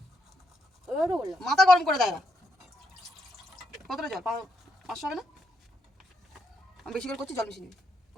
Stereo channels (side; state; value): both; normal; correlation 0.78